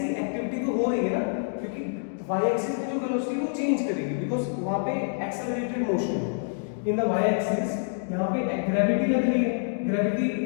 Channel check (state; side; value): silent; right; digital silence